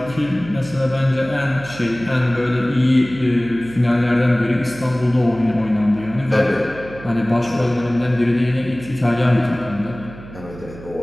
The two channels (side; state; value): right; noise; hum, 16 dB below the sound